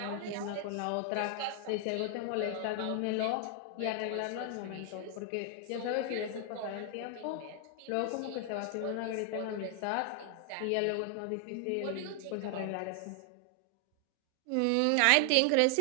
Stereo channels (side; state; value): both; different; correlation 0.00